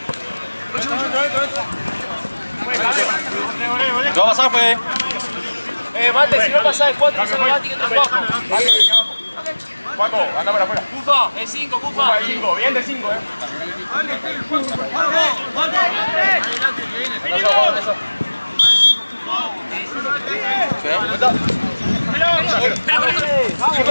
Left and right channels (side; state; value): both; inverted; correlation -1.00